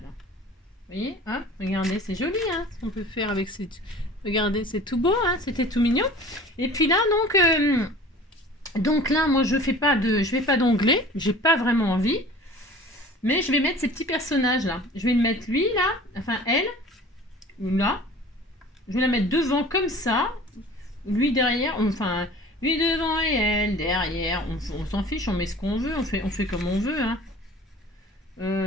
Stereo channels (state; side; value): normal; both; correlation 0.44